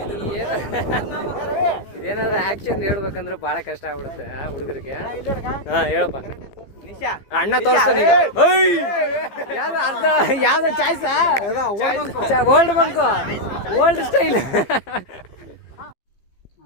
ಇದೇನಾದ್ರೂ ಆಕ್ಷನ್ ಹೇಳ್ಬೇಕಂದ್ರೆ ಬಹಳ ಕಷ್ಟ ಆಗ್ಬಿಡುತ್ತೆ ಹುಡುಗರಿಗೆ. ಹಾ ಹೇಳಪ್ಪ ಅಣ್ಣ ತೋರಿಸ್ತಾನೆ ಈಗ. ಯಾವ್ದು ಅರ್ಧ ಯಾವ್ದು ಚಾಯ್ಸ ಓಲ್ಡ್ ಬಂಕು ಓಲ್ಡ್ ಸ್ಟೈಲ್.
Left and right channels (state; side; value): late; right; 15 ms